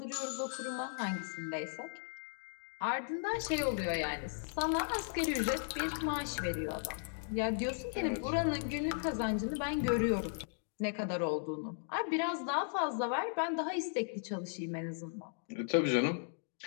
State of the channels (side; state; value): right; silent; digital silence